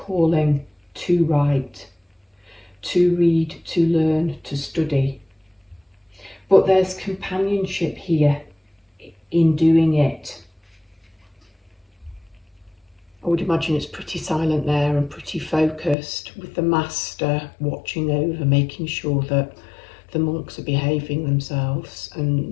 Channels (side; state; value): right; drops out; at 16.0 s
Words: to write, to read, to learn, to study. But there's companionship here in doing it. I would imagine it's pretty silent there and pretty focused, with the master watching over, making sure that the monks are behaving themselves